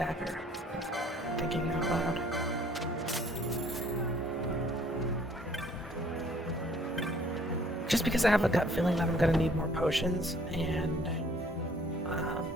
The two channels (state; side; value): normal; both; correlation 0.58